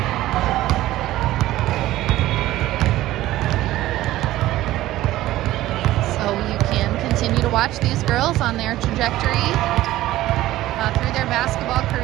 Continue to watch these girls on their trajectory through their basketball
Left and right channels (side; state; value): left; quieter; 15.6 dB